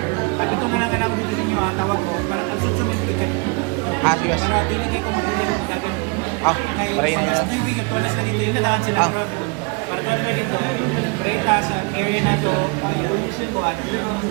Sabi ko na lang ka na ako dito sa inyo, tawag ko. Ang susunod gikan. Yes. Para hindi ko matulog. Paray na yan. Tuwalas na dito, yun na lang sila. Para tuwalas na dito, Preta sa area na ito, pollution ko at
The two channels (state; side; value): quieter; left; 31.5 dB